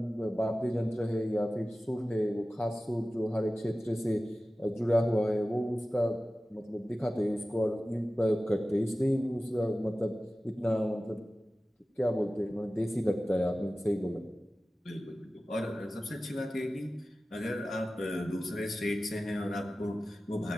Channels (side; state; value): both; normal; correlation 0.96